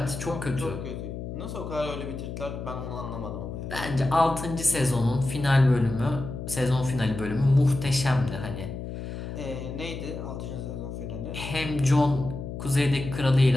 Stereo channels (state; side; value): noise; left; hum, 7 dB below the sound